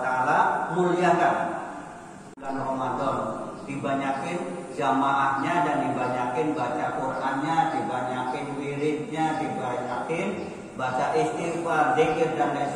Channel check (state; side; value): identical; both; correlation 1.00